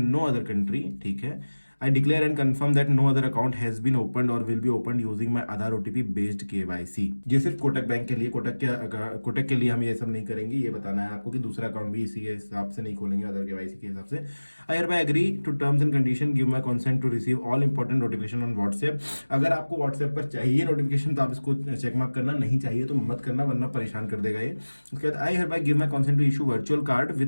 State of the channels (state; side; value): inverted; both; correlation -1.00